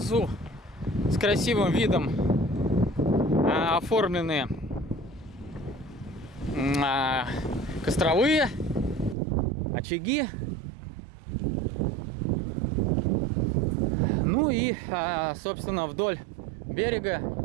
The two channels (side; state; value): left; drops out; at 9.2 s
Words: с красивым видом оформлены костровые очаги. Ну и, собственно, вдоль берега